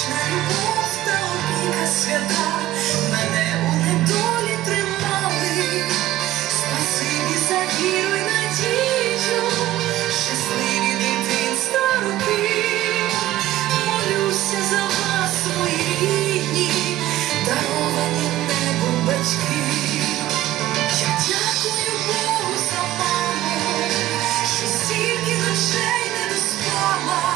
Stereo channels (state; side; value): quieter; left; 14.8 dB